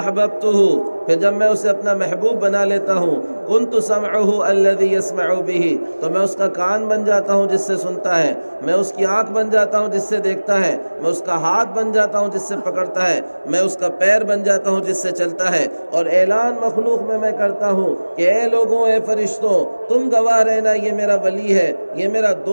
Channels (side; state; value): both; inverted; correlation -1.00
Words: پھر جب میں اسے اپنا محبوب بنا لیتا ہوں، كُنْتُ سَمْعُهُ الَّذِي يَسْمَعُ بِهِ، تو میں اس کا کان بن جاتا ہوں جس سے سنتا ہے، میں اس کی آنکھ بن جاتا ہوں جس سے دیکھتا ہے، میں اس کا ہاتھ بن جاتا ہوں جس سے پکڑتا ہے، میں اس کا پیر بن جاتا ہوں جس سے چلتا ہے۔ اور اعلان مخلوق میں کرتا ہوں کہ اے لوگوں، اے فرشتوں، تم گواہ رہنا یہ میرا ولی ہے، یہ میرا